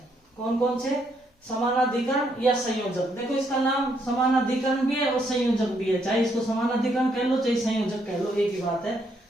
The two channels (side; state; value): both; normal; correlation 0.73